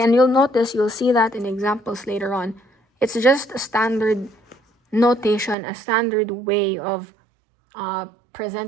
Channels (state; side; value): drops out; left; at 5.6 s